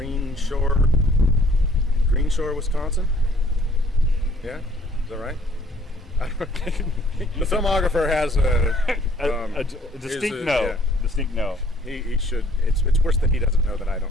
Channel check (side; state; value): both; normal; correlation 0.60